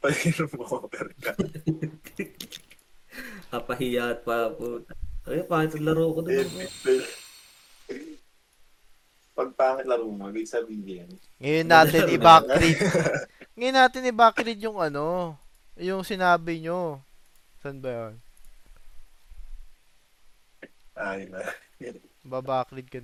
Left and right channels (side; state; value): both; identical; correlation 1.00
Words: pa yung over ka. Kapahiya at pa po. Ay, pangit ang laro ko doon. Pag pangit laro mo, ibig sabihin. Ngayon natin i-backread. Ngayon natin i-backread yung ano, yung sinabi nyo. Saan ba yun? Ay na. Babackread ka